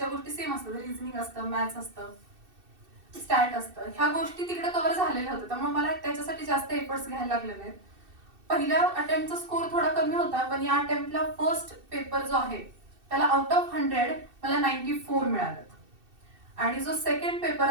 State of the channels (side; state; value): left; late; 2.6 ms